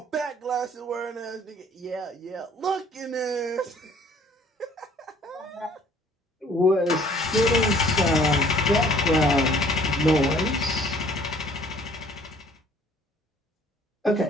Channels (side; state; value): both; normal; correlation 0.56